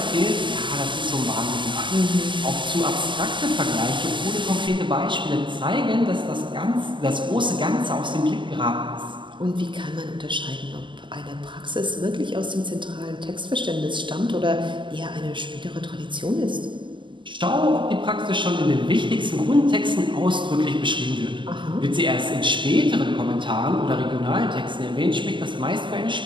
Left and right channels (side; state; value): left; late; 0.24 ms